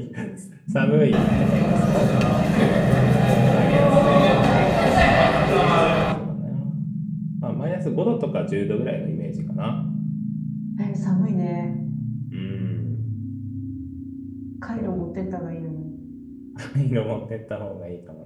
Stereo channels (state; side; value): identical; both; correlation 1.00